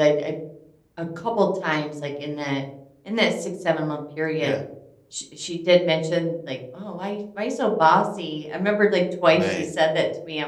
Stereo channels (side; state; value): both; identical; correlation 1.00